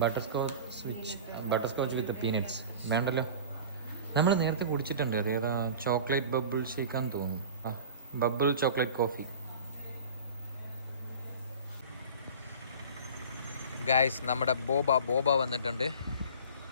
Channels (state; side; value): inverted; both; correlation -0.38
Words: ബട്ടർ സ്കോച്ച് വിത്ത് പീനട്സ് വേണ്ടല്ലോ. നമ്മൾ നേരത്തെ കുടിച്ചിട്ടുണ്ട്. അതേതാ? ചോക്ലേറ്റ് ബബിൾ ഷേക്കാന്ന് തോന്നുന്നു. Bubble chocolate coffee. ഗൈസ്, നമ്മുടെ ബോബ വന്നിട്ടുണ്ട്.